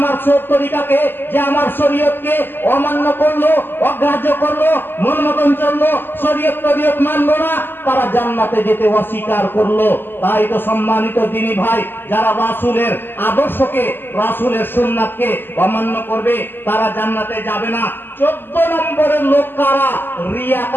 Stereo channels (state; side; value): late; right; 0.096 ms